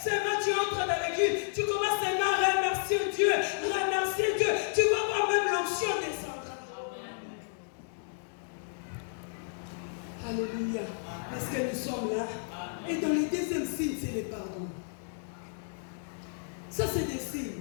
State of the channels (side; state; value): right; silent; digital silence